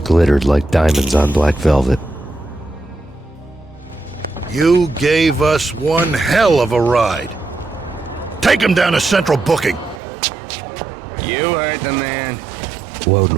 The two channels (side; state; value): left; drops out; at 10.0 s